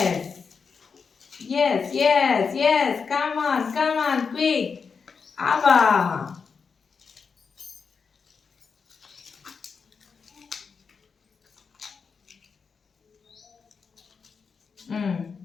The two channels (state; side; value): quieter; right; 5.6 dB